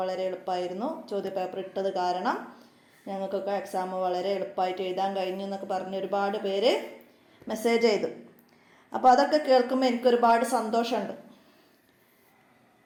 വളരെ എളുപ്പമായിരുന്നു, ചോദ്യപേപ്പർ ഇട്ടത് കാരണം ഞങ്ങൾക്കൊക്കെ എക്സാം വളരെ എളുപ്പമായിട്ട് എഴുതാൻ കഴിഞ്ഞു എന്നൊക്കെ പറഞ്ഞ് ഒരുപാട് പേര് മെസ്സേജ് ചെയ്തു. അപ്പോൾ അതൊക്കെ കേൾക്കുമ്പോൾ എനിക്കൊരുപാട് സന്തോഷമുണ്ട്.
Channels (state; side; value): identical; both; correlation 1.00